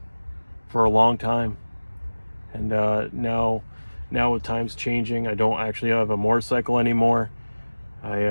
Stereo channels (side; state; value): both; inverted; correlation -1.00